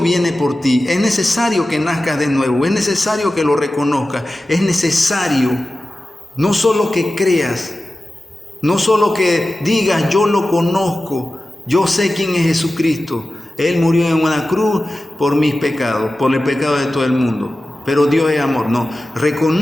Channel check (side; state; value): both; normal; correlation 0.94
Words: viene por ti. Es necesario que nazcas de nuevo, es necesario que lo reconozcas, es necesario no solo que creas, no solo que digas yo lo conozco, yo sé quién es Jesucristo. Él murió en una cruz por mis pecados, por el pecado de todo el mundo. Pero Dios es amor. No,